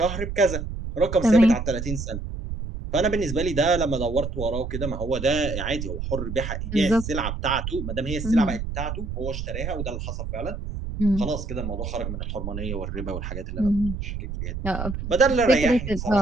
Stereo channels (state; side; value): noise; right; rumble, 6 dB below the sound